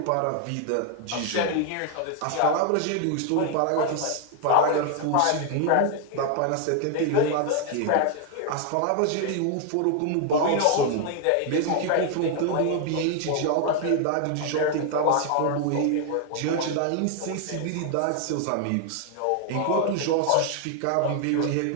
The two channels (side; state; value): both; different; correlation 0.00